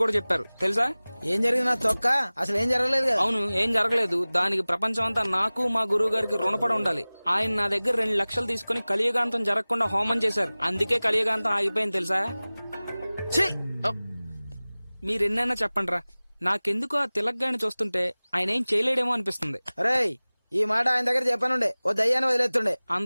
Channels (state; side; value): inverted; both; correlation -0.99